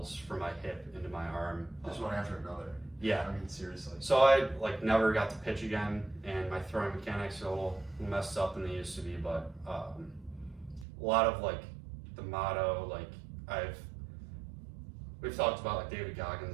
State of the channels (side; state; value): left; drops out; at 10.9 s